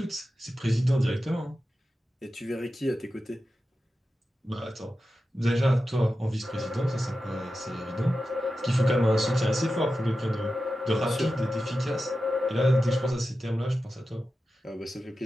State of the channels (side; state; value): both; normal; correlation 0.92